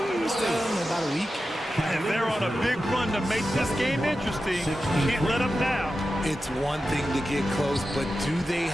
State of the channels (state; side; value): normal; both; correlation 0.92